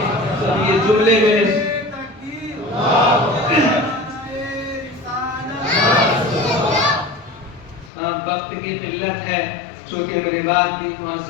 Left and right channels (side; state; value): right; drops out; at 7.9 s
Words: یہ جملے میں وقت کی قلت ہے، چونکہ میرے بعد بھی